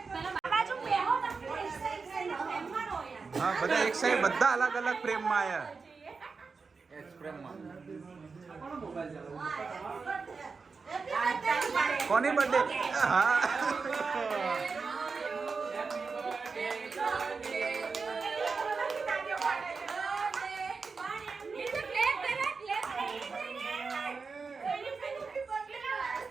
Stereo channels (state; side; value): quieter; left; 4.7 dB